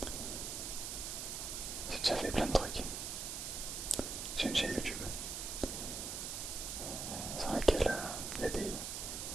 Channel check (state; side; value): noise; right; hiss, 4 dB below the sound